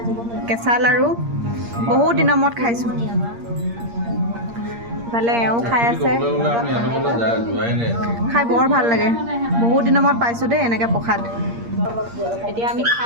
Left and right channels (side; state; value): left; late; 8.6 ms